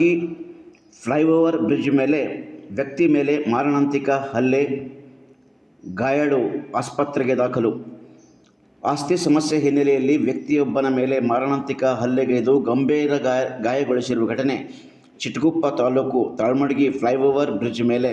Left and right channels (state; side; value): identical; both; correlation 1.00